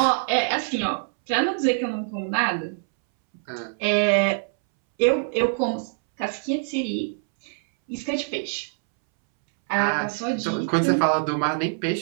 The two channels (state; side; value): silent; left; 62 dB below the other